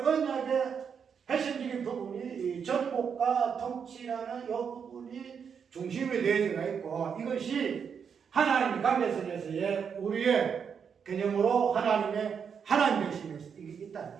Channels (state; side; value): quieter; left; 6.9 dB